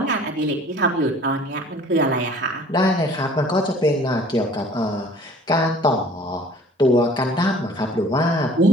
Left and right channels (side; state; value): both; normal; correlation 0.49